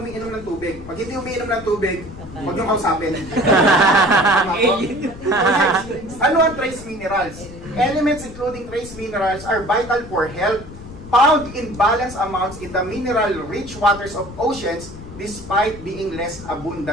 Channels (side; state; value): left; noise; rumble, 15 dB below the sound